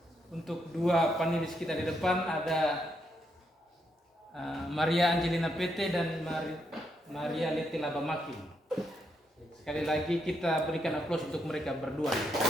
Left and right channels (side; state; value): both; normal; correlation 0.79